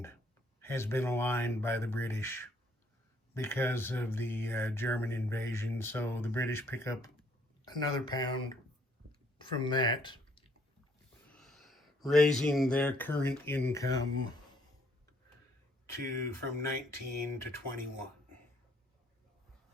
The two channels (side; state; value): both; normal; correlation 0.65